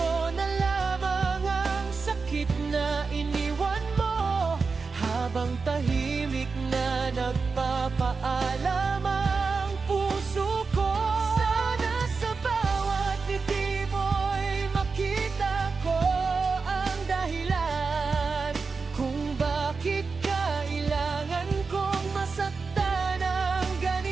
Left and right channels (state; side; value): quieter; left; 4.6 dB